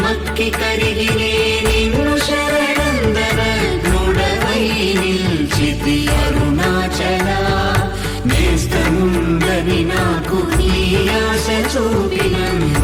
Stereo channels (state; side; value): identical; both; correlation 1.00